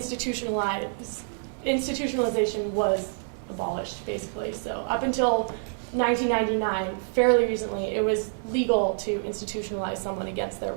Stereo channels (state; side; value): silent; left; digital silence